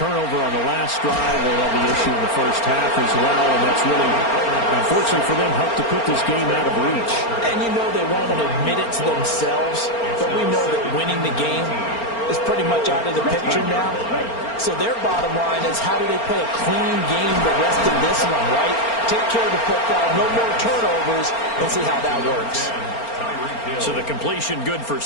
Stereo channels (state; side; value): late; right; 4.4 ms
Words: on the last drive, they had the issue in the first half as well, and that's really, unfortunately for them, helped to put this game out of reach. And you know they won't admit it to themselves, but we know that winning the game is pretty much out of the picture now. So their bottom line is, how do they play a clean game the rest of this one, right? Take care of the football, no more turnovers, and see how that works. So the completion good for